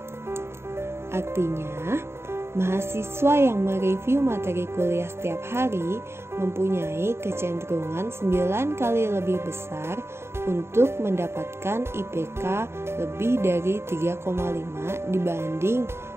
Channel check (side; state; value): left; late; 0.12 ms